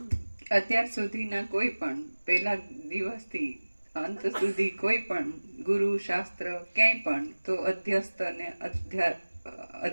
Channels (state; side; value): inverted; both; correlation -1.00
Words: અત્યાર સુધીના કોઈ પણ પહેલા દિવસથી અંત સુધી કોઈ પણ ગુરુ શાસ્ત્ર ક્યાંય પણ તો અધ્યસ્ત અને